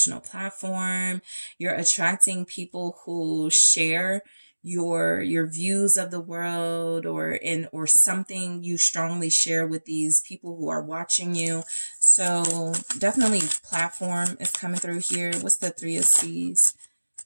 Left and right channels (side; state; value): both; inverted; correlation -1.00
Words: platform. You're attracting people who share your views of the world or something you strongly share with these people who are watching you. So definitely platform is coming through here. What's the Three of Seas?